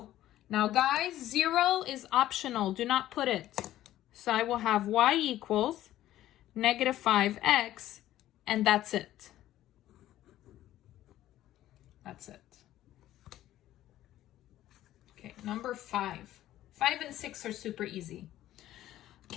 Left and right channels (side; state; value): right; quieter; 13.7 dB